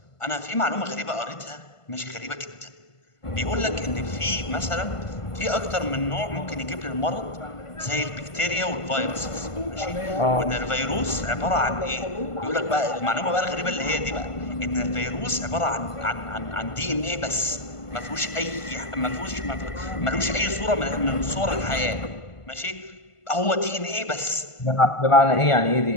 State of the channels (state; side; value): late; right; 1.5 ms